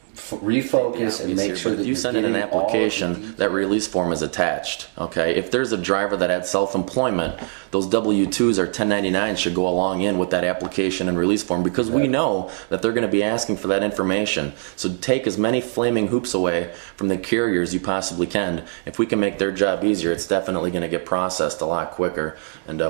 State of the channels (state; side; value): silent; left; 59 dB below the other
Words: refocus and make sure that if you send in an application, that release form is attached. Okay, if there's a driver that had self-employment, those W-2s or 1099s should go along in with that application and release form, because we know that they're going to be asking for that information. So take as many flaming hoops away from the carriers you possibly can. If we can make their job easier, it's definitely going to get processed a lot quicker and